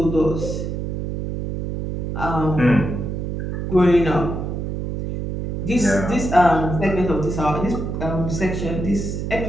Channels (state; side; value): noise; right; hum, 4 dB below the sound